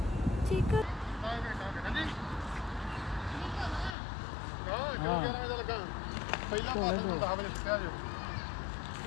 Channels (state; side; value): drops out; right; at 4.0 s